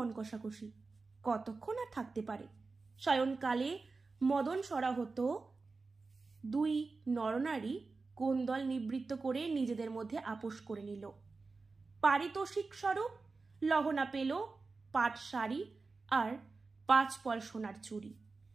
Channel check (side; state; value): left; quieter; 4.0 dB